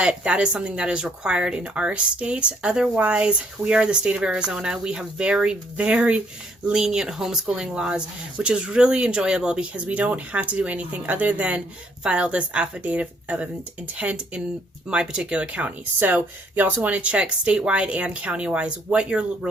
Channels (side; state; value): both; normal; correlation 0.67